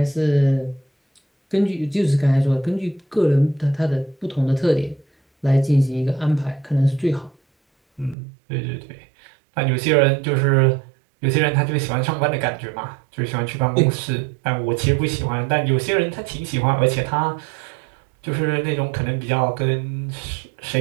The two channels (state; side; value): drops out; left; at 8.2 s